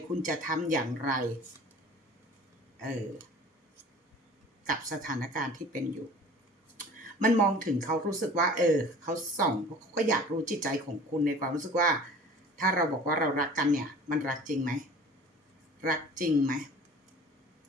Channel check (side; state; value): both; normal; correlation 0.45